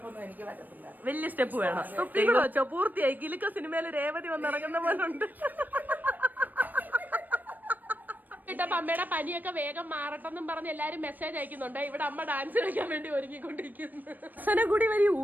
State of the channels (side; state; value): left; late; 0.087 ms